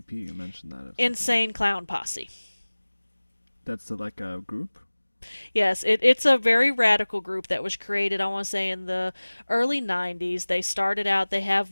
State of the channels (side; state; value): both; inverted; correlation -1.00